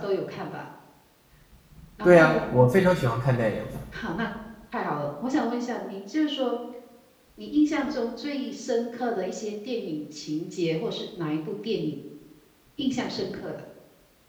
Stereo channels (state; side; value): identical; both; correlation 1.00